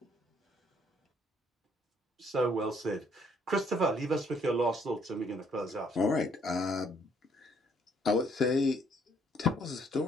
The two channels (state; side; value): normal; both; correlation 0.66